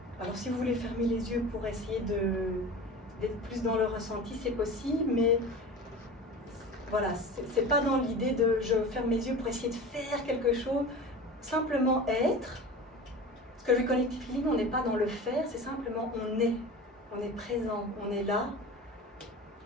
Alors si vous voulez fermer les yeux pour essayer d'être plus dans le ressenti, c'est possible, mais voilà, c'est pas dans l'idée de je ferme mes yeux pour essayer de faire quelque chose, simplement être. Parce que le Connective Healing, on n'est pas dans le faire, c'est simplement on est présent, on est là,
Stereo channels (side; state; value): both; normal; correlation 0.34